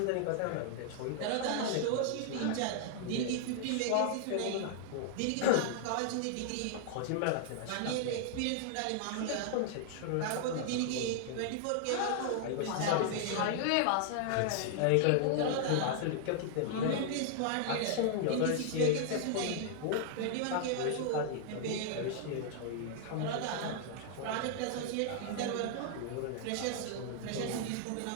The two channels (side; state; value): both; different; correlation -0.01